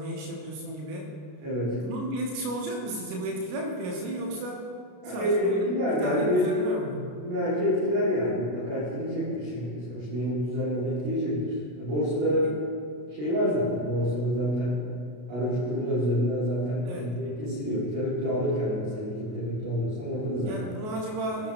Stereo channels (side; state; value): left; late; 33 ms